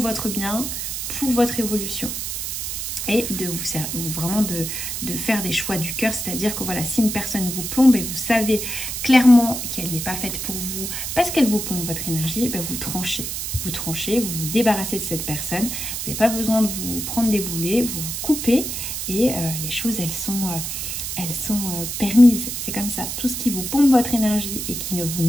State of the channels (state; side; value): noise; right; hiss, 4 dB below the sound